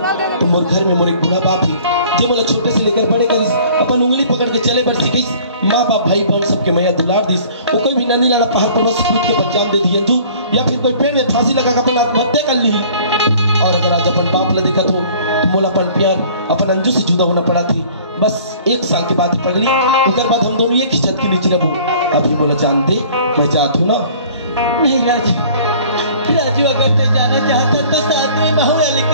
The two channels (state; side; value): inverted; both; correlation -0.51